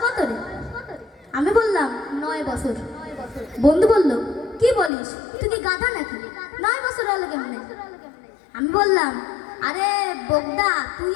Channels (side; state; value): right; drops out; at 4.9 s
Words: কত রে? আমি বললাম 9 বছর। বন্ধু বলল, কি বলিস, তুই কি গাধা নাকি? 9 বছর হলো কেমনে? আমি বললাম, আরে বোগদা, তুই